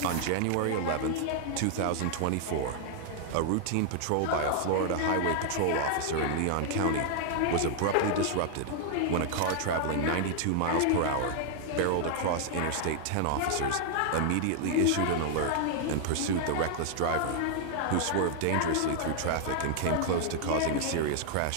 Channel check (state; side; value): different; both; correlation 0.00